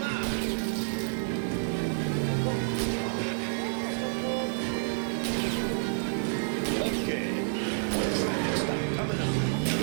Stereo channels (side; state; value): left; silent; 58 dB below the other